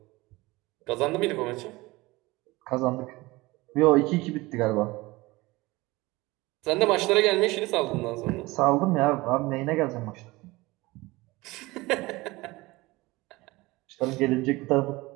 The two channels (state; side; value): quieter; left; 21.3 dB